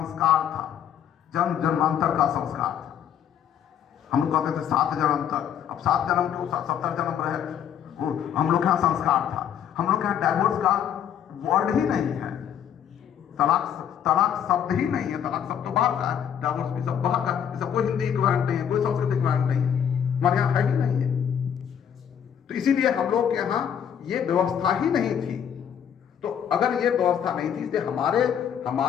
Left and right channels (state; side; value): quieter; right; 8.9 dB